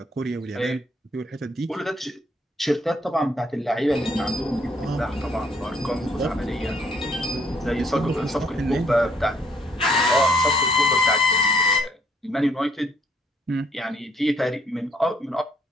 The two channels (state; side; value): normal; both; correlation 0.68